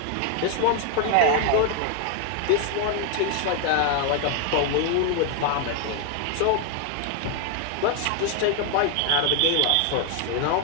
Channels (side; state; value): both; different; correlation 0.01